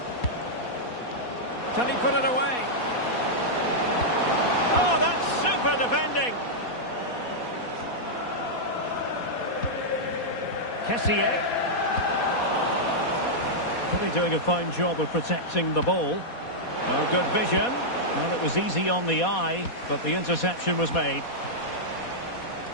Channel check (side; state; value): right; late; 4.2 ms